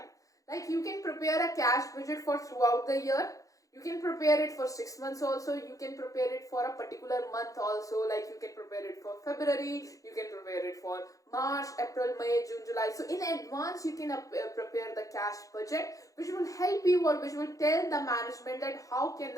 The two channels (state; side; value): late; right; 0.16 ms